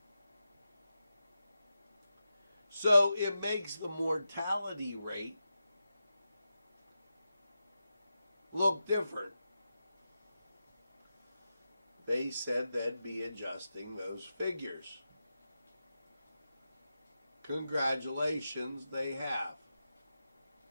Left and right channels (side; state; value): both; inverted; correlation -0.90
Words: So it makes the mortality rate look different. They said they'd be adjusting those figures. Congratulations, they have.